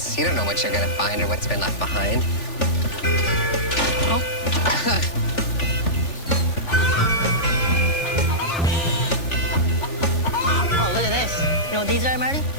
You don't know what you're going to find or what's been left behind. Oh. Oh, look at this. You know what these are, Marty?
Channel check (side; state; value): right; late; 3.4 ms